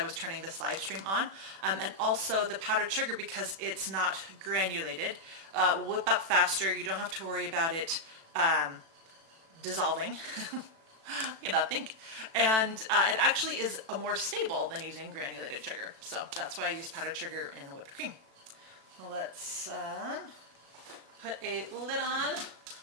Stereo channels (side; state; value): left; late; 36 ms